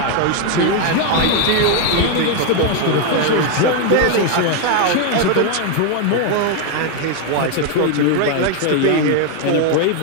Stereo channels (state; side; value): different; both; correlation 0.01